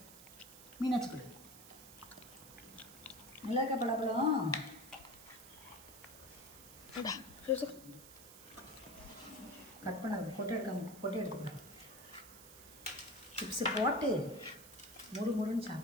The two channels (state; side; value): noise; right; hiss, 16 dB below the sound